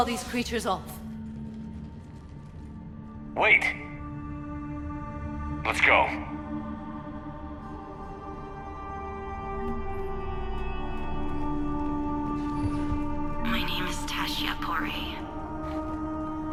these creatures off. Wait! Let's go. My name is Tashia Pori.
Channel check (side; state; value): both; identical; correlation 1.00